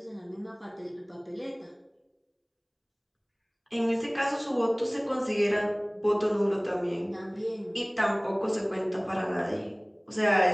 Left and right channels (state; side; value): identical; both; correlation 1.00